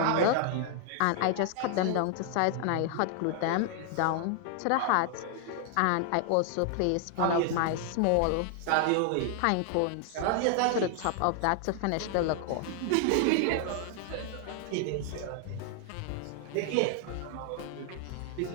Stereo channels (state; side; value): different; both; correlation 0.00